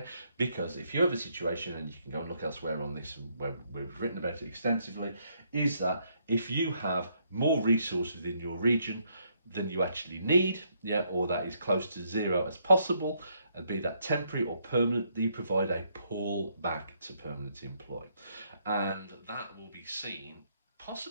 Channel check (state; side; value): inverted; both; correlation -0.73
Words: because if you have a situation, and you can go and look elsewhere on this, and where we've written about it extensively, is that if you have more resources within your region than you actually need, yeah, or that is close to zero as possible, and be that temporary or permanent, you provide a pull back to permanent employ. And that will be seen